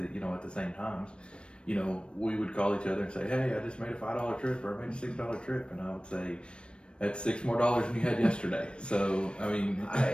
same times. You know, we would call each other and say, "Hey, I just made a $5 trip, or I made a $6 trip," and I would say, "That's $6 more than you had yesterday." So I mean,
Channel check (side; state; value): right; late; 0.057 ms